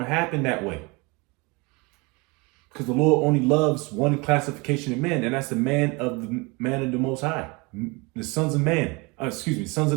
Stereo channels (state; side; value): quieter; left; 27.1 dB